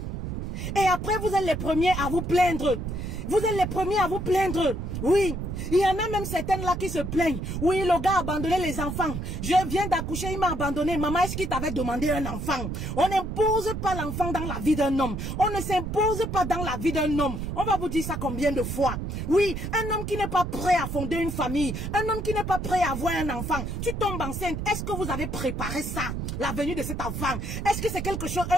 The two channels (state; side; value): noise; right; rumble, 5 dB below the sound